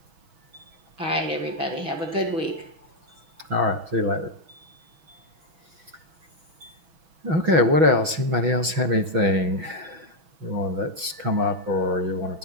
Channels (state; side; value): late; left; 6.1 ms